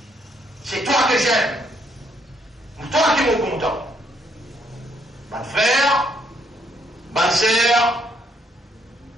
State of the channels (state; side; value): normal; both; correlation 0.71